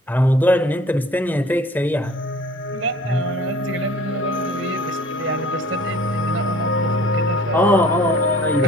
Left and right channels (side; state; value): both; normal; correlation 0.50